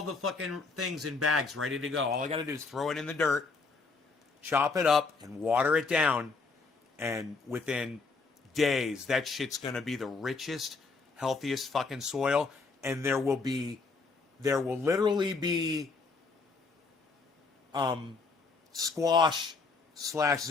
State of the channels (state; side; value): quieter; right; 4.2 dB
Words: the fucking things in bags ready to go. All I got to do is throw it in the dirt, chop it up, and water it down. And within days, that shit's going to be the richest, healthiest fucking soil. And there will literally be squash /